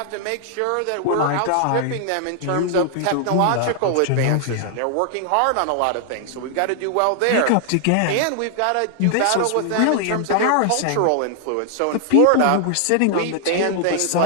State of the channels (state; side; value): different; both; correlation 0.00